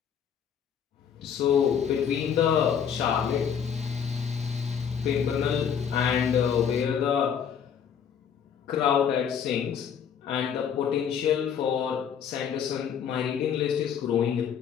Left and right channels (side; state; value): right; quieter; 7.8 dB